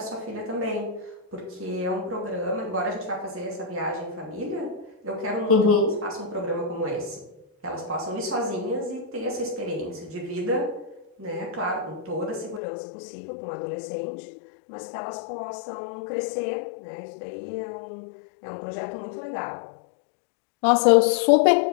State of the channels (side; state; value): right; drops out; at 12.6 s